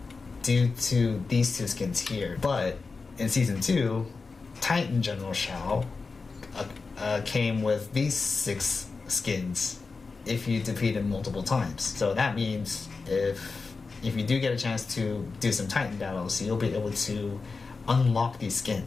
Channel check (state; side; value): quieter; right; 4.3 dB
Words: due to these two skins here. But in season 2, Titan General Shao came with these 6 skins if you defeat him multiple times. So that means if you do get a chance to do some Titan battles, you'll be able to unlock these